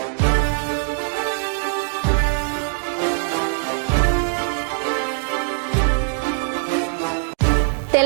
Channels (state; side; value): silent; left; digital silence